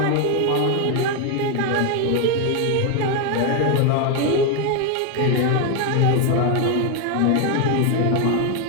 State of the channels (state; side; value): different; both; correlation 0.01